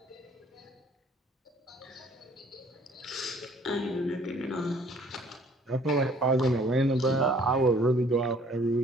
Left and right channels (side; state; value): both; normal; correlation 0.57